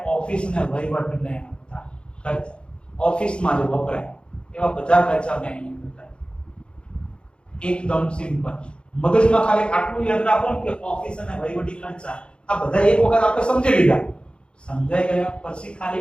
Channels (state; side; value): late; right; 0.055 ms